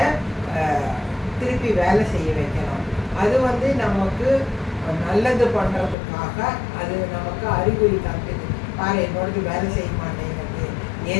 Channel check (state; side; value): drops out; right; at 6.0 s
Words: திருப்பி வேலை செய்ய வைக்கணும். அது நமக்கு நல்லது பண்ணுறதுக்காக அது நமக்கு அறிகுறி காட்டுது. பாரு என்னோடது வேலை செய்ய மாட்டேங்கிறது,